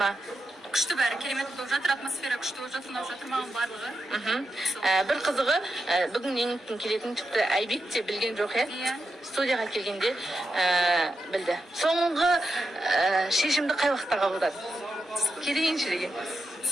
Күшті бәрі, керемет болып жатыр, атмосфера күшті болып жатыр, ұнап жатыр маған барлығы. Бір қызығы, бүгін еңліктің келетін тіпті Айбек те білген жоқ, студияға келгенде білді. Соңғы шешімді қай уақытта қабылдады? Келейінші деген.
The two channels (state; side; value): normal; both; correlation 0.87